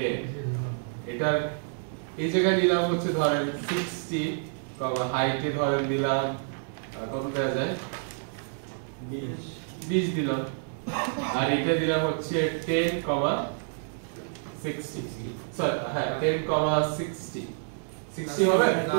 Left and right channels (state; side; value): silent; left; 59 dB below the other